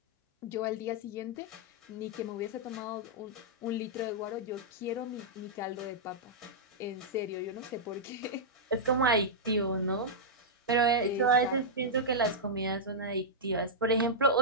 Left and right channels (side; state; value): both; normal; correlation -0.09